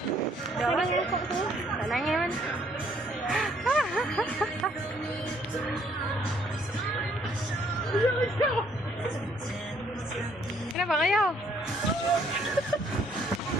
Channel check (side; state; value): both; normal; correlation 0.65